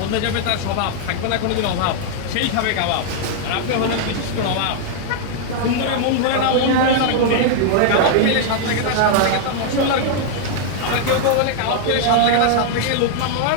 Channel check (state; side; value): different; both; correlation -0.01